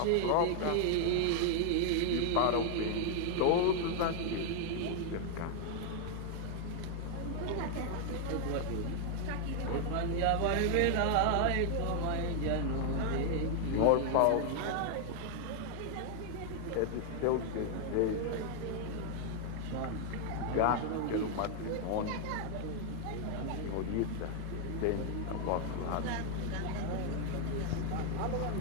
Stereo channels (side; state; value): both; different; correlation 0.00